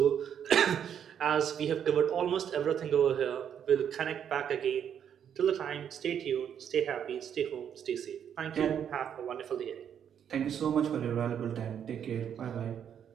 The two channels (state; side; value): quieter; left; 8.7 dB